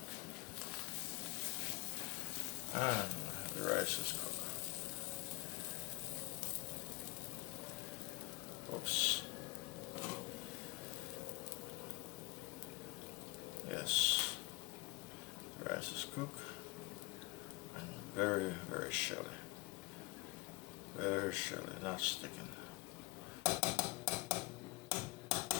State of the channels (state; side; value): quieter; right; 25.7 dB